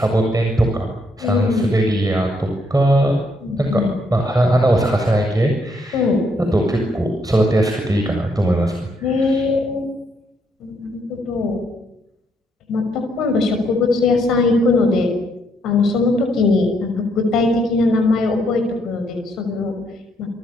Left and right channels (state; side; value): normal; both; correlation 0.73